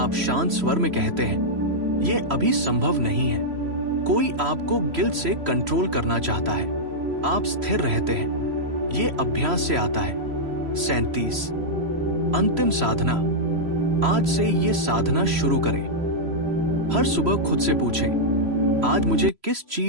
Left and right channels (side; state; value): left; late; 3.0 ms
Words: शांत स्वर में कहते हैं, यह अभी संभव नहीं है। कोई आपको गिल्ट से कंट्रोल करना चाहता है, आप स्थिर रहते हैं, यह अभ्यास से आता है। 37 अंतिम साधना। आज से ये साधना शुरू करें। हर सुबह खुद से पूछें, आज मुझे किस